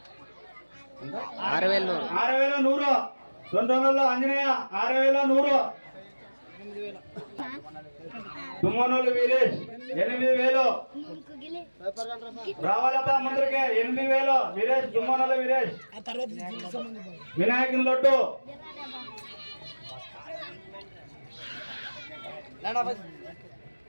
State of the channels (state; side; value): inverted; both; correlation -1.00